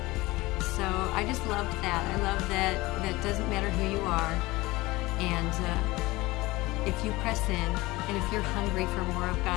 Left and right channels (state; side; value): quieter; right; 20.5 dB